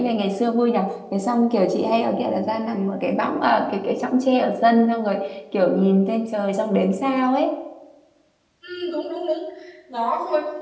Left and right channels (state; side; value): identical; both; correlation 1.00